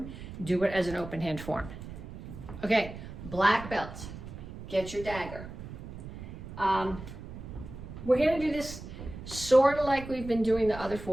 do it as an open hand form. Okay, black belt. Get your dagger. We're gonna do this sort of like we've been doing the other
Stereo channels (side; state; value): right; noise; rumble, 11 dB below the sound